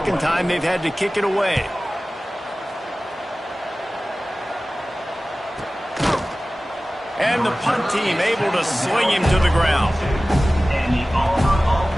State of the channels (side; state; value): both; normal; correlation 0.97